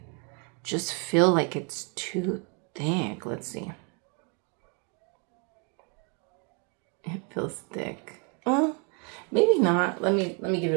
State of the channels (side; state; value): left; quieter; 35.9 dB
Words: just feel like it's too thick. Let's see. It feels thick. Well, maybe not. Let me give